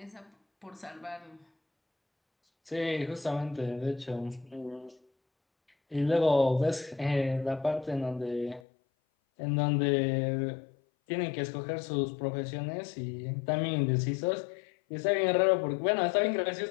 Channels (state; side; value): drops out; right; at 8.6 s